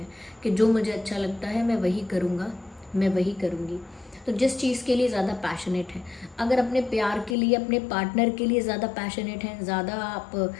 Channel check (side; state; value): right; drops out; at 7.4 s